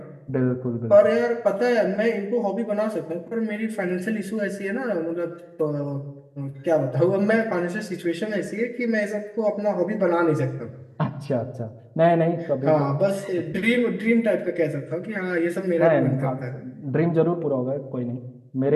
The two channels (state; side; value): identical; both; correlation 1.00